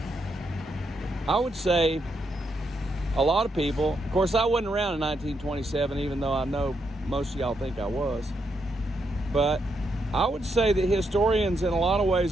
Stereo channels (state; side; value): normal; both; correlation 0.80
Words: I would say a lot of people, of course I wasn't around in 1927, even though I know most of y'all think I was. But I would say that historians in a lot of